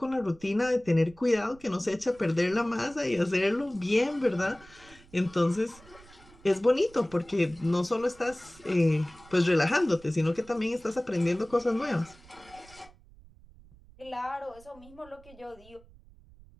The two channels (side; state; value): right; noise; rumble, 24 dB below the sound